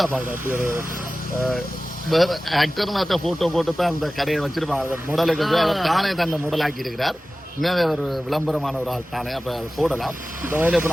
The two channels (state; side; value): normal; both; correlation 0.96